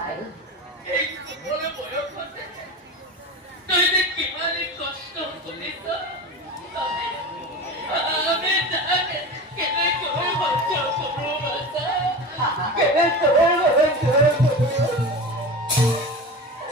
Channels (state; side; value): normal; both; correlation 0.29